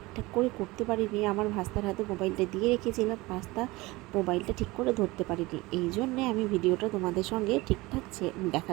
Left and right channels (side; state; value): left; quieter; 21.5 dB